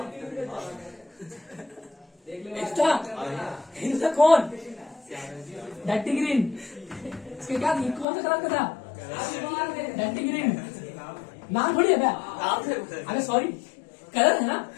एक्स्ट्रा इसका कौन डर्टी ग्रीन? इसके क्या कौन सा कलर का था? डर्टी ग्रीन नाम थोड़ी है क्या? अरे सॉरी कलर है ना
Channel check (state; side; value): drops out; right; at 8.1 s